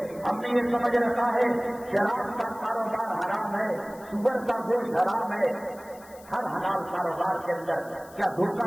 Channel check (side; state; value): left; noise; hiss, 23 dB below the sound